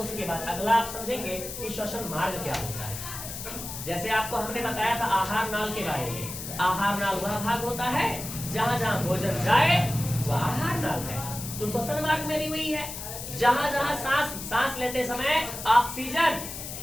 बाद अगला आप समझेंगे कि श्वसन मार्ग क्या होता है। जैसे आपको हमने बताया था आहार नाल के बारे में। आहार नाल वह भाग होता है जहां जहां भोजन जाए वह आहार नाल है। तो श्वसन मार्ग में भी वही है, जहां जहां सांस लेते समय ऑक्सीजन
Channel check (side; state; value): left; noise; hiss, 8 dB below the sound